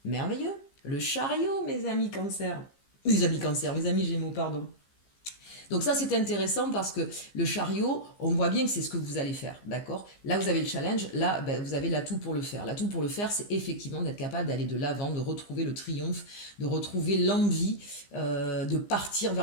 merveilleux, le chariot mes amis cancer. Mes amis cancer, mes amis gémeaux, pardon. Donc ça, c'est intéressant parce que le chariot, on voit bien que c'est ce que vous allez faire, d'accord? Là, vous avez le challenge, là, ben, vous avez l'atout pour le faire. L'atout pour le faire, c'est effectivement d'être capable d'aller de l'avant, de retrouver le triomphe, de retrouver l'envie, de partir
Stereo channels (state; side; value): late; right; 15 ms